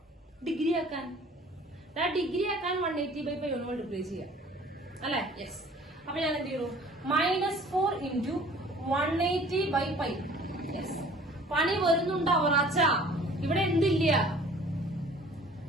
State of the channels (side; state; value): both; normal; correlation 0.50